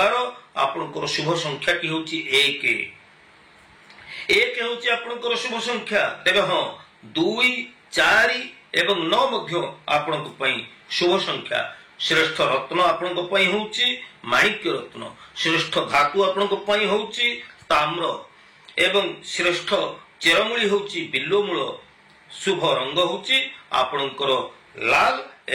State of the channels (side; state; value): both; identical; correlation 1.00